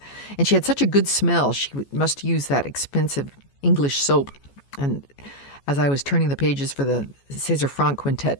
And she had such a good smell. She must use that expensive English soap. And as I was turning the pages for the César Franck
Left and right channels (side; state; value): right; late; 14 ms